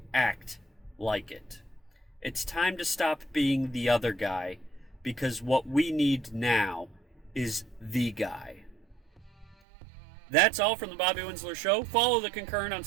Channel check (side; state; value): left; drops out; at 9.6 s